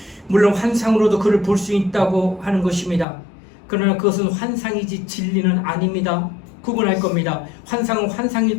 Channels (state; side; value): drops out; right; at 3.1 s